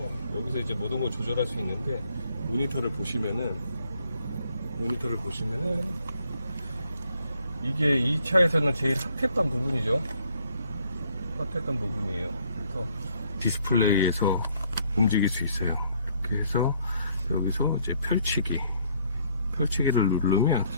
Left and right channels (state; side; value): inverted; both; correlation -0.66